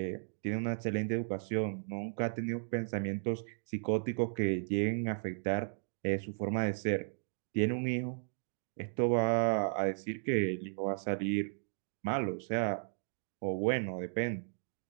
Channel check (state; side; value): silent; left; digital silence